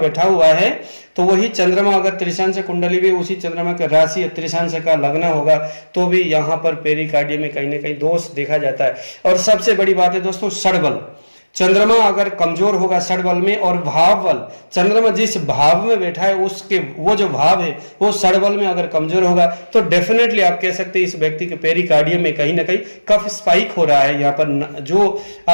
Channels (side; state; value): both; inverted; correlation -1.00